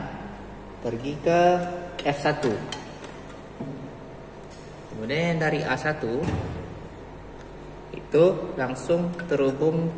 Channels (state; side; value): identical; both; correlation 1.00